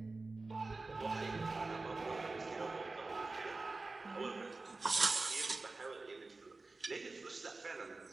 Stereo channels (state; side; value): quieter; left; 3.5 dB